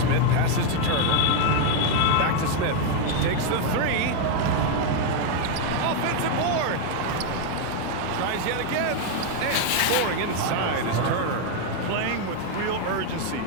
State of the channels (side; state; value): both; different; correlation 0.01